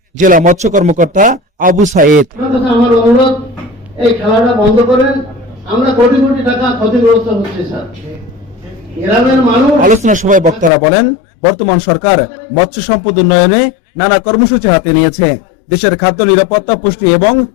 জেলা মৎস্য কর্মকর্তা আবু সাইদ। আমার অনুরোধ, এই খেলাটা বন্ধ করেন। আমরা কোটি কোটি টাকা ক্ষতিগ্রস্ত হচ্ছে স্যার। আলোচনা সভায় বক্তারা বলেন, বর্তমান সরকার মৎস্য সম্পদ উন্নয়নে নানা কর্মসূচি হাতে নিয়েছে। দেশের খাদ্য নিরাপত্তা, পুষ্টি এবং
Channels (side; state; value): right; drops out; at 10.7 s